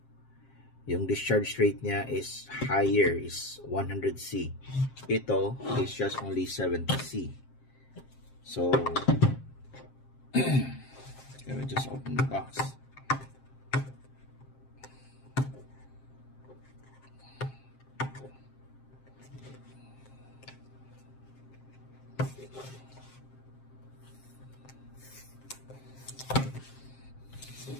Yung discharge rate niya is higher, is 100C. Ito is just only 70C. So let me just open the box.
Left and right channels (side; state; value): right; late; 7.5 ms